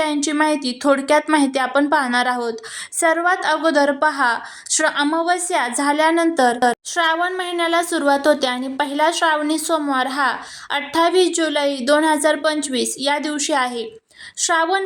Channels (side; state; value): both; identical; correlation 1.00